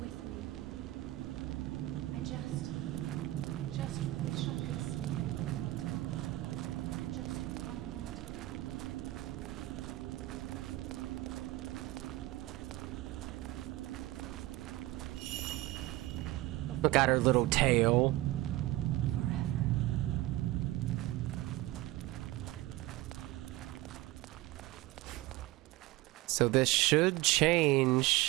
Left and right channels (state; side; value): quieter; left; 17.8 dB